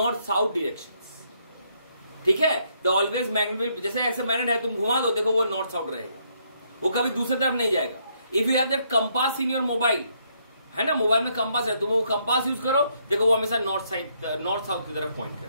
directions. ठीक है? The always magnet will, जैसे ऐसे magnet है तुम घुमा दो देखो वो north-south रहेगा. वो कभी दूसरी तरफ नहीं जाएगा. If you have that compass in your mobile, है ना, मोबाइल में कंपास है, तुम वो कंपास यूज करो, देखो वो हमेशा नॉर्थ साउथ की तरफ पॉइंट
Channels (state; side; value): inverted; both; correlation -0.72